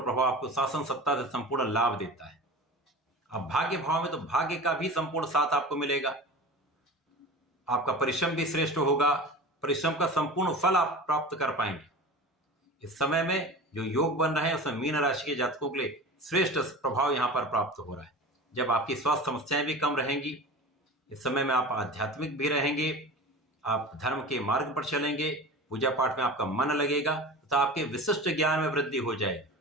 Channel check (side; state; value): both; normal; correlation 0.34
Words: प्रभाव आपको शासन सत्ता से संपूर्ण लाभ देता है। अब भाग्य भाव में तो भाग्य का भी संपूर्ण साथ आपको मिलेगा। आपका परिश्रम भी श्रेष्ठ होगा, परिश्रम का संपूर्ण फल आप प्राप्त कर पाएंगे। इस समय में जो योग बन रहे हैं उसमें मीन राशि के जातकों के लिए श्रेष्ठ प्रभाव यहां पर प्राप्त हो रहा है। जब आपकी स्वास्थ्य समस्याएं भी कम रहेंगी, इस समय में आप आध्यात्मिक भी रहेंगे, आप धर्म के मार्ग पर चलेंगे, पूजा पाठ में आपका मन लगेगा तथा आपके विशिष्ट ज्ञान में वृद्धि हो जाएगी।